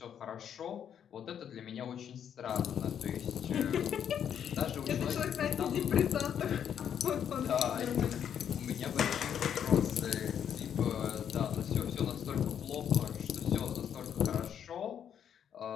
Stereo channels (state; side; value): quieter; right; 8.8 dB